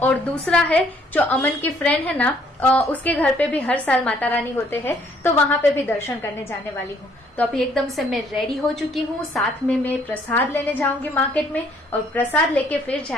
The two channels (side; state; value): both; normal; correlation 0.64